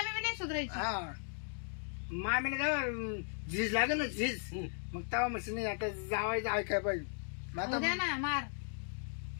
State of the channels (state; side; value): silent; right; 53 dB below the other